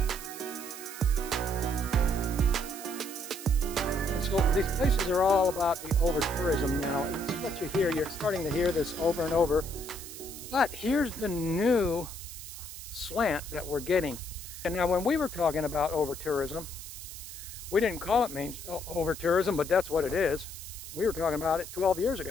So these places are all about the over-tourism now. It's what you hear. You're starting to hear this over and over. But here's the new slant that we're getting. And now when we were talking about over-tourism, we didn't call it over-tourism, but that's what it is. We were talking about it 12 years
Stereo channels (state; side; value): noise; right; hiss, 11 dB below the sound